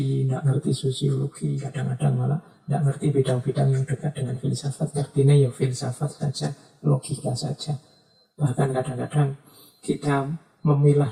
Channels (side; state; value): both; identical; correlation 1.00